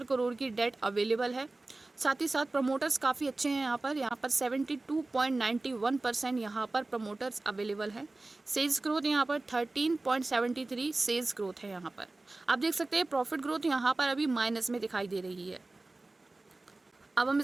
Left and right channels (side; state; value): left; quieter; 3.1 dB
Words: करोड़ की डेट अवेलेबल है। साथ ही साथ प्रमोटर्स काफ़ी अच्छे हैं यहाँ पर 72.91% यहाँ पर प्रमोटर्स अवेलेबल है। सेल्स ग्रोथ यहाँ पर 13.73 सेल्स ग्रोथ है यहाँ पर। आप देख सकते हैं प्रॉफिट ग्रोथ यहाँ पर अभी माइनस में दिखाई दे रही है। अब हम